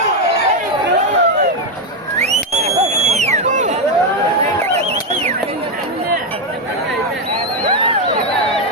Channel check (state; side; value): normal; both; correlation 0.05